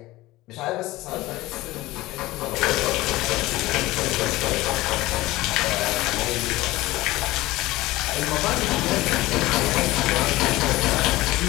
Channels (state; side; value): quieter; right; 18.5 dB